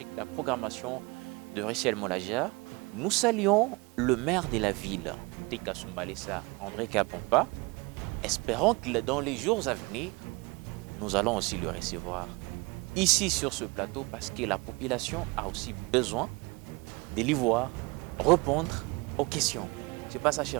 que la programmation de Richel Molagia. Nous saluons le maire de la ville de Kasumbalesa, André Kapompa. Espérons que dans les jours à venir, nous allons aussi le recevoir ici sur ce plateau parce que la population a aussi besoin de l'y voir répondre aux questions. C'est pas ça,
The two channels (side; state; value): left; quieter; 26.1 dB